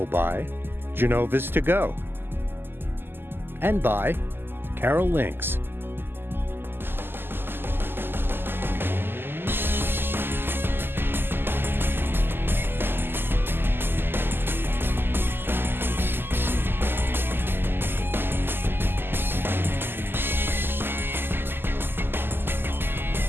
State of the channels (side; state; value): left; late; 0.10 ms